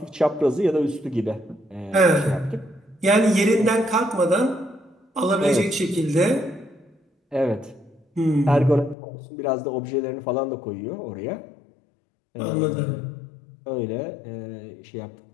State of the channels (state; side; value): drops out; right; at 9.0 s